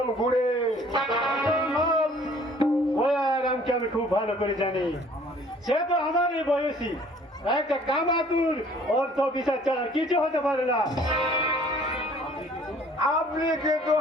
গুড়ে। ওয়ারামকে আমি খুব ভালো করে জানি, সে তো আমারই বয়সী, একটা কামাতুর অর্থ বিচার ছাড়া কিছু হতে পারে না। আপনি কিন্তু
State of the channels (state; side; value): normal; both; correlation 0.55